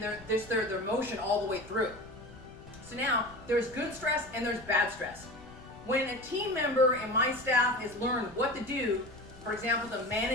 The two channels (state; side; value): noise; left; rumble, 20 dB below the sound